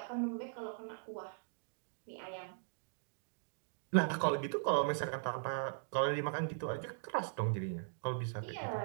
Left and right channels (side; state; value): left; silent; digital silence